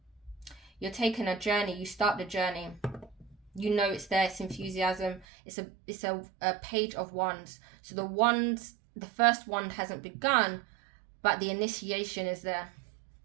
You're taking a journey, you start the journey. You know it's there, it's enthusiasm. It's a page of wands. So the first wand hasn't begun, but the initiation is there.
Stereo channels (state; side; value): drops out; left; at 5.2 s